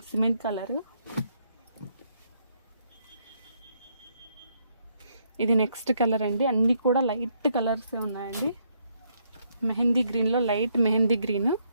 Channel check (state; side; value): inverted; both; correlation -0.73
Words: Cement colour. ఇది నెక్స్ట్ కలర్ అండి. అన్నీ కూడా లైట్ కలర్సే ఉన్నాయండి. మెహందీ గ్రీన్లో light mehndi green